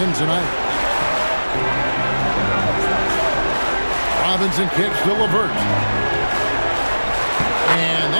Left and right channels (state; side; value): inverted; both; correlation -1.00